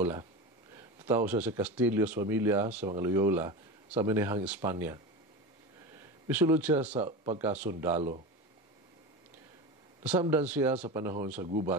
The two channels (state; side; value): normal; both; correlation 0.25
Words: Tao siya sa Castillos Familia sa mga Loyola sa Minahang, Espanya. Misulod siya sa pagkasundalo. Nasamdan siya sa panahon sa